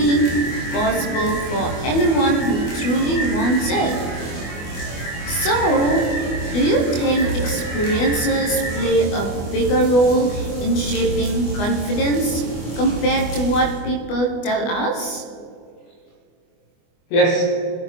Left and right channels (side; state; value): right; late; 24 ms